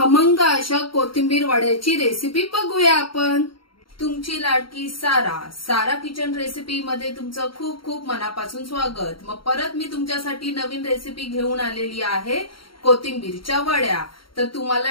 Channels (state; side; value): late; right; 0.73 ms